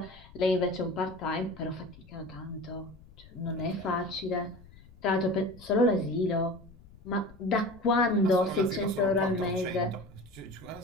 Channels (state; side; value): noise; left; rumble, 22 dB below the sound